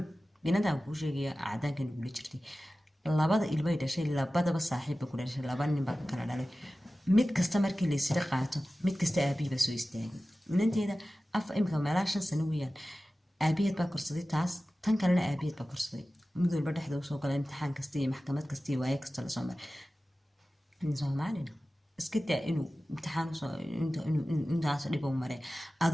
binadan kuu sheegaya cadaankan igula jirtay 2 ilmay dhashay 2 saaxiibba ku dhashay 2 nin baa kala dhalay mid kasta markii la isla qaato mid kasta aabihiiba soo istaagay inanteeda imika meelaa 5 sano weeyaan aabiheed baa korsaday taas tan kalena aabiheed baa korsaday mid walba dhexda usoo gala imtixaan kasta iyo maxkamad kasta iyo waaye kasta lasoo maray soomaalina iska daa inuu imtixaan intaas dhib u maray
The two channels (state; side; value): normal; both; correlation 0.96